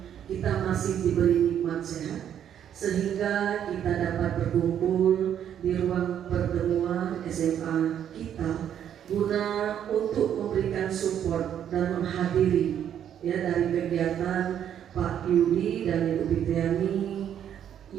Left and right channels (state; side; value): quieter; left; 9.6 dB